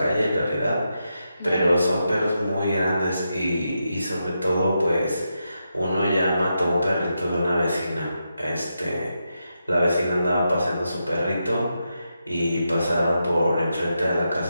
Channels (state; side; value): inverted; both; correlation -0.85